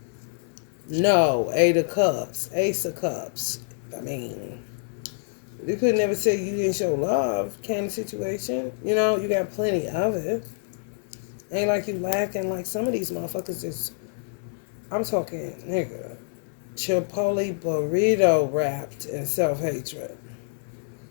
no, Eight of Cups, Ace of Cups. I mean, you could never say you didn't show love kind of situation. You know, you got plenty of it. Ain't like you lacking like some of these motherfuckers is, I'm talking, nigga, Chipotle burrito wrapped in self-hatred.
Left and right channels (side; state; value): right; silent; 61 dB below the other